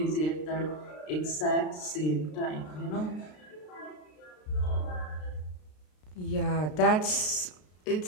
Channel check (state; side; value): late; right; 33 ms